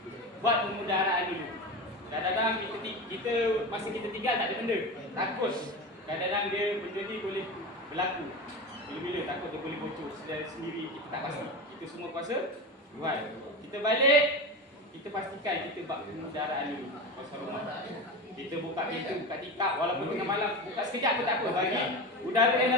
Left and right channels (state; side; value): normal; both; correlation 0.24